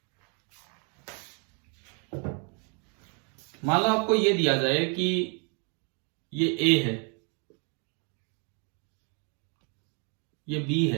मान लो आपको ये दिया जाए कि ये A है, ये B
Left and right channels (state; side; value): quieter; left; 37.5 dB